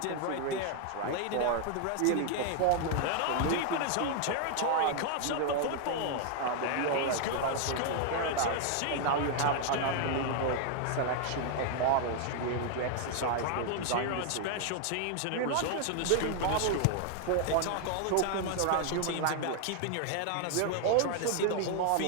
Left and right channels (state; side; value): different; both; correlation 0.00